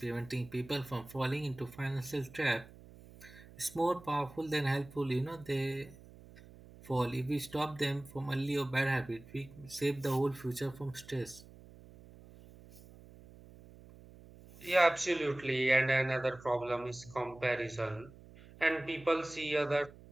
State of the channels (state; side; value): noise; right; hum, 20 dB below the sound